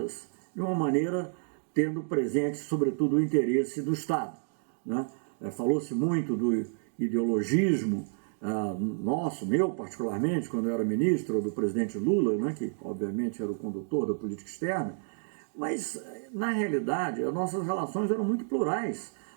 de uma maneira tendo presente, sobretudo, o interesse do Estado, né? Falou-se muito do ideologismo meu particularmente, quando eu era ministro, ou do presidente Lula, né, que obviamente era o condutor da política externa, mas, na realidade, as nossas relações eram muito plurais,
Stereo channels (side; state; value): left; silent; digital silence